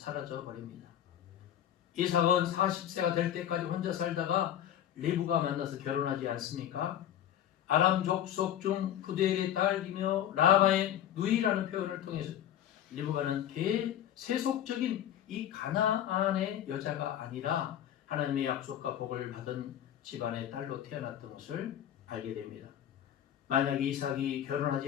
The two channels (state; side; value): quieter; right; 10.8 dB